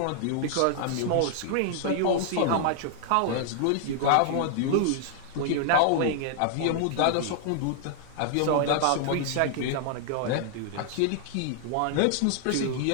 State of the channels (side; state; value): both; different; correlation -0.01